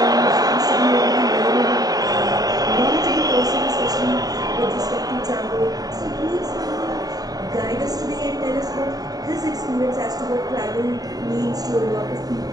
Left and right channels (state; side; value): late; left; 0.18 ms